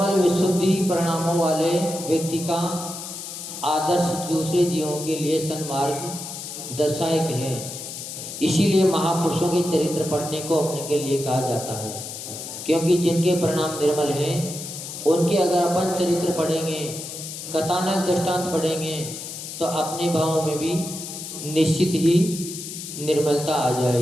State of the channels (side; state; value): left; noise; hiss, 9 dB below the sound